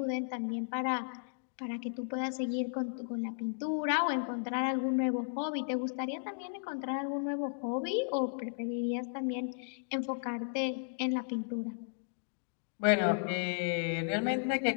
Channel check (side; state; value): right; silent; digital silence